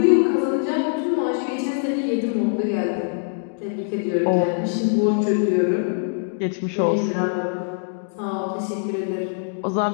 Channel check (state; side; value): silent; right; digital silence